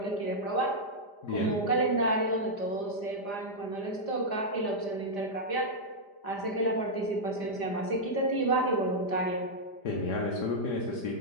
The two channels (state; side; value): late; right; 5.0 ms